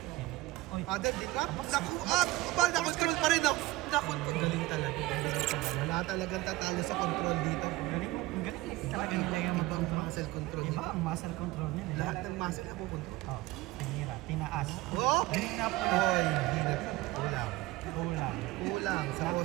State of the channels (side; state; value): left; quieter; 19.1 dB